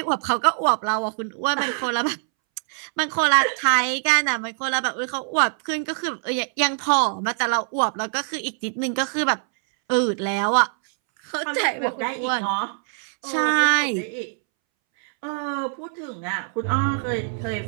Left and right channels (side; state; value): left; silent; 63 dB below the other